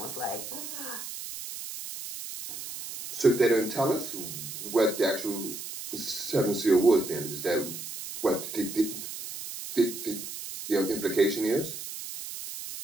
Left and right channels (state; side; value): noise; right; hiss, 9 dB below the sound